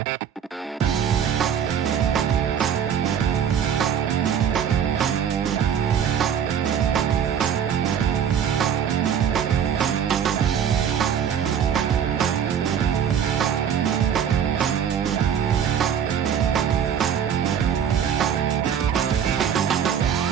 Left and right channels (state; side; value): quieter; left; 8.3 dB